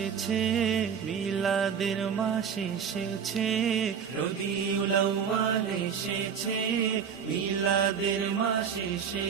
মিলাদের মাস এসেছে। রবিউল আউয়াল এসেছে, মিলাদের মাস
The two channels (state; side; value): quieter; left; 7.3 dB